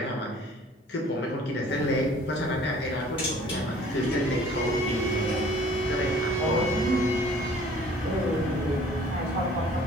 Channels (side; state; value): both; normal; correlation 0.52